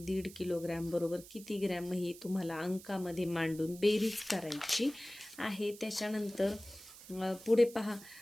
1.5 किलोग्रॅम बरोबर किती ग्रॅम, ही तुम्हाला अंकामध्ये मांडून बेरीज करायची आहे. त्याच्यानंतर पुढे पहा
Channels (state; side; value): noise; right; hiss, 17 dB below the sound